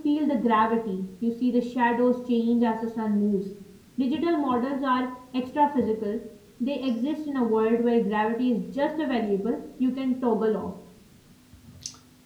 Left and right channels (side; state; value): both; identical; correlation 1.00